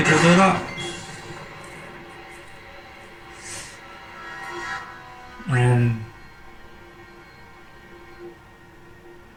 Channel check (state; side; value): identical; both; correlation 1.00